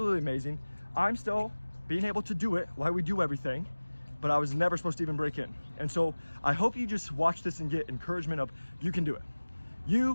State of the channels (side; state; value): both; inverted; correlation -1.00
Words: amazing. I'm still being able to do it while we do everything, but I was never supposed to even break in. And so I hope you just watch this and get encouragement of you can do it.